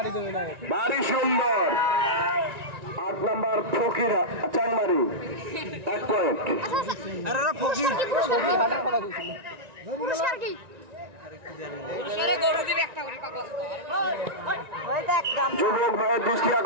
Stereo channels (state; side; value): late; left; 1.9 ms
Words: ভারী সুন্দর 8 নম্বর ফকির চাংমারি 1 পয়েন্ট। যুবক ভাইয়ের দৃষ্টি